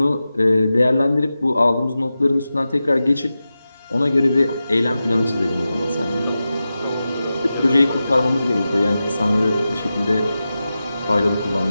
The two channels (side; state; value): both; inverted; correlation -0.93